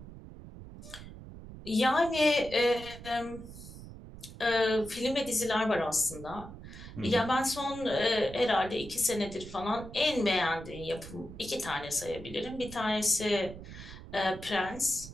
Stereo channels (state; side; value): noise; right; rumble, 14 dB below the sound